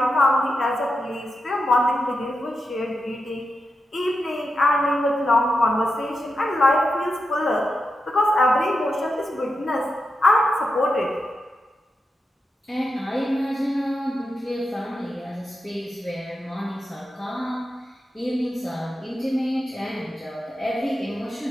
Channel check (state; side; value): normal; both; correlation 0.88